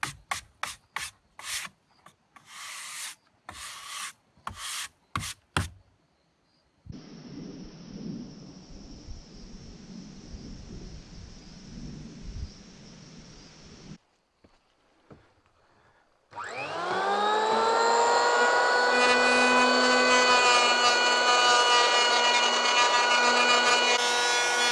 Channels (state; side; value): identical; both; correlation 1.00